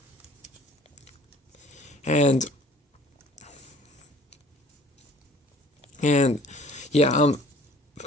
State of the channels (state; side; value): normal; both; correlation 0.52